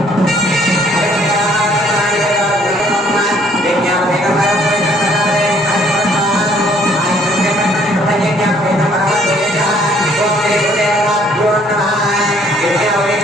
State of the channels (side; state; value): both; normal; correlation 0.62